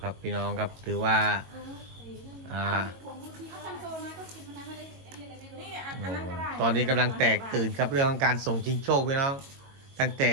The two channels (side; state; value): left; late; 22 ms